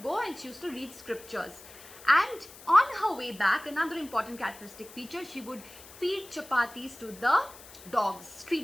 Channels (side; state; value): left; noise; hiss, 18 dB below the sound